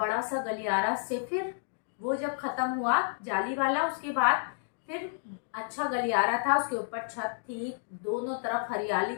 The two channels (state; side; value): silent; right; digital silence